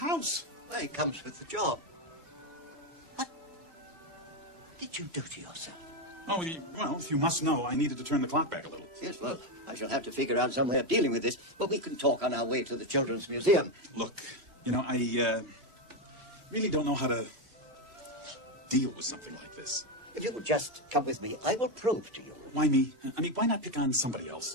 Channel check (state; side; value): late; left; 3.0 ms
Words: Well, it comes with the job. What did you do to yourself? Oh, well, you must know I needed to turn the clock back a little. Yes, well, I shall have to figure out some way of dealing with this, but we can talk on our way to the Children's Museum. Look, you know, I really don't know how to deal with something like this. If you will just come with me, I will prove to you. Why me? I mean, why not pick on somebody